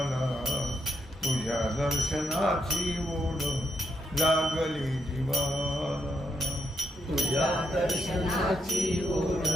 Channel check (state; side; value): normal; both; correlation 0.79